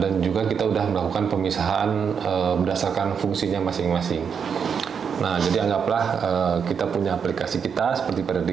juga kita udah melakukan pemisahan berdasarkan fungsinya masing-masing. Nah, jadi anggaplah kita punya aplikasi kita seperti pada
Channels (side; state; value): left; quieter; 6.8 dB